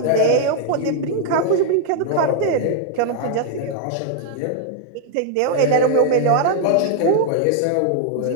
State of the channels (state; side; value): different; both; correlation 0.00